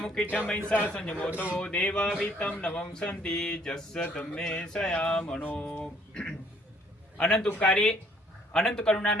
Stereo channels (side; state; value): both; normal; correlation 0.63